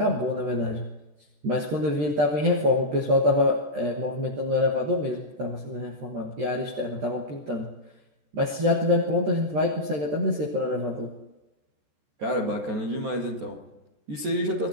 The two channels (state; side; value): late; left; 14 ms